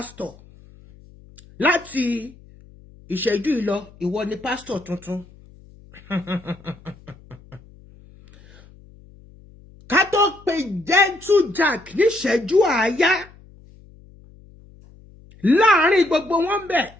Láti ìṣẹ́jú ìlọ, ìwọ ni pastor tuntun. Ká tó pe Gentle Jack ní ìṣẹ́jú àáyá. Láàárín gbogbo wọn bẹ̀.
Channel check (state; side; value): noise; left; hum, 24 dB below the sound